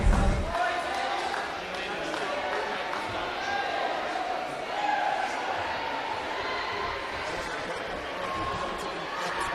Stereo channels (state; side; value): identical; both; correlation 1.00